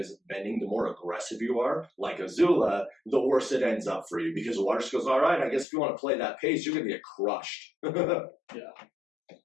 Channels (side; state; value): right; drops out; at 5.7 s